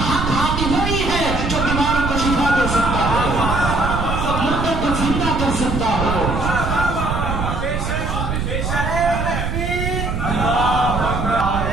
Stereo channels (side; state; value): right; noise; rumble, 2 dB below the sound